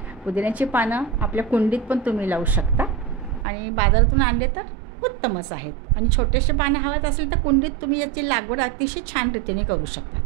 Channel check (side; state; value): left; drops out; at 3.5 s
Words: पुदिन्याची पानं आपल्या कुंडीत पण तुम्ही लावू शकता आणि बाजारातून आणले तर उत्तमच आहेत. आणि छोटेसे पानं हवत असेल तर कुंडीत तुम्ही याची लागवड अतिशय छान रीतीने करू शकता.